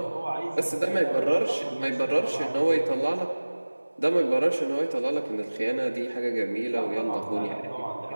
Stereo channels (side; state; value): both; inverted; correlation -1.00